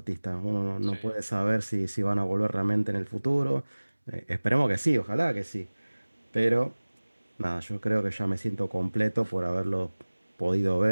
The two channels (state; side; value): inverted; both; correlation -1.00